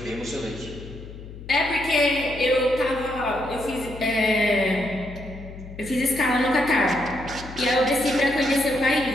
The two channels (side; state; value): left; noise; hum, 14 dB below the sound